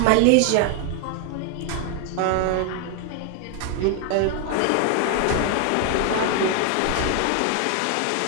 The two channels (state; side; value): different; both; correlation 0.00